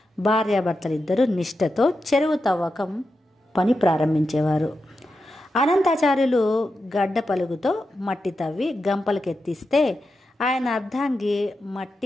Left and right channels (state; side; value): normal; both; correlation 0.89